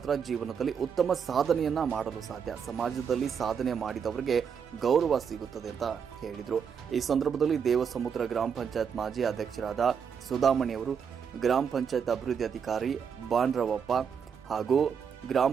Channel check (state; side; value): quieter; left; 7.0 dB